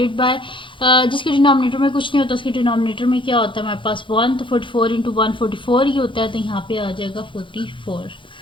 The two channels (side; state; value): right; late; 0.24 ms